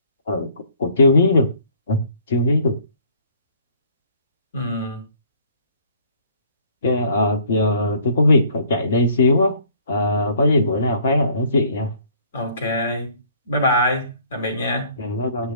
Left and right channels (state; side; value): inverted; both; correlation -0.58